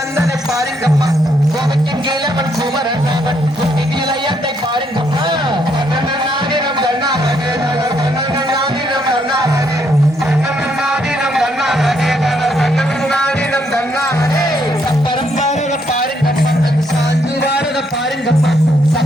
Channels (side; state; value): both; normal; correlation 0.73